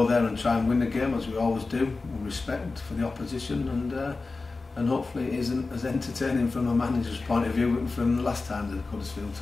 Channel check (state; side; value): quieter; right; 3.8 dB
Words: there and try and win the game as we always do, with respect for the opposition, and hopefully it isn't as entertaining from a manager's point of view from the last time the Huddersfield